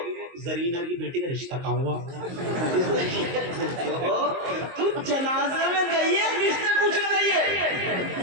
زرینہ کی بیٹی کا رشتہ کہاں ہوا؟ تو جنازے میں گئی ہے، رشتے پوچھنے گئی ہے،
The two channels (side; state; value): left; late; 22 ms